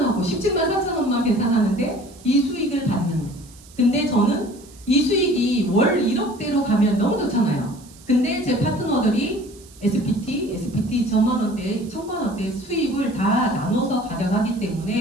17만 4천 원만 계산하는데 이 수익을 받는. 근데 저는 이 수익이 월 1억대로 가면 너무 좋잖아요. 근데 제 파트너들이 SPT 2천만 원대, 1,000만 원대 수익을 다 나눠서 가져가기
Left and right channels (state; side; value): noise; right; hiss, 23 dB below the sound